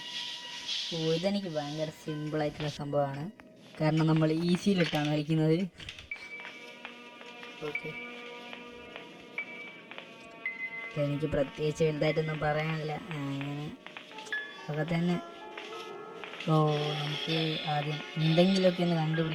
ഇതെനിക്ക് ഭയങ്കര സിമ്പിളായിട്ടുള്ള സംഭവമാണ്, കാരണം നമ്മൾ ഈസിയിലിട്ടാണ് കളിക്കുന്നത്. ഓക്കെ, എനിക്ക് പ്രത്യേകിച്ച് വലുതായിട്ടൊന്നും പറയാനില്ല, അങ്ങനെ ഒക്കെ തന്നെ. നമുക്ക് ആദ്യം എന്തെങ്കിലുമൊക്കെ ഒന്ന്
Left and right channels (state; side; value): identical; both; correlation 1.00